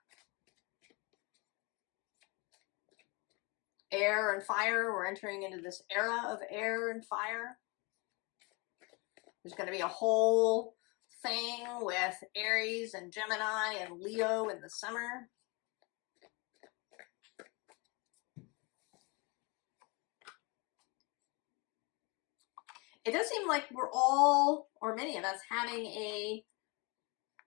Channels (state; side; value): quieter; right; 28.9 dB